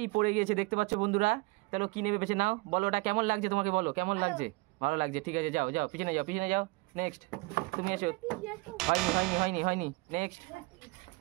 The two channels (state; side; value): quieter; left; 25.4 dB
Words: পড়ে গিয়েছে দেখতে পাচ্ছ বন্ধুরা। তাহলে কি নেবে বেছে নাও, বলো ওটা কেমন লাগছে তোমাকে, বলো কেমন লাগছে। ভালো লাগছে, ঠিক আছে যাও যাও পিছনে যাও, পিছনে যাও। নেক্সট তুমি এসো। হয়নি হয়নি হয়নি হয়নি, নেক্সট।